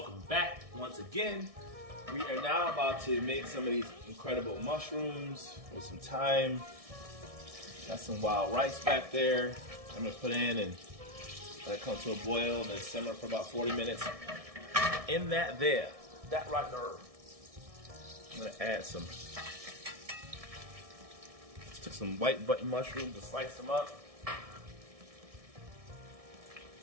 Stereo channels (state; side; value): late; left; 1.6 ms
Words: back once again. We are now about to make some of these incredible mushrooms with some thyme. Got some wild rice back there. I'm gonna put in and let it come to a boil and then simmer for about 40 minutes. In that right there, I'm gonna add took some white button mushrooms and slice them up.